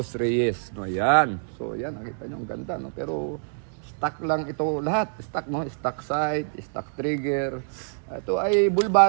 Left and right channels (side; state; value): left; silent; 61 dB below the other